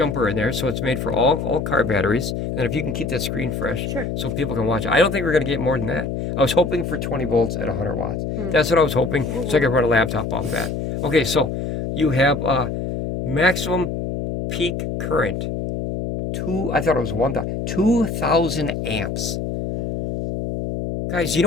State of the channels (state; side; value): noise; left; hum, 3 dB below the sound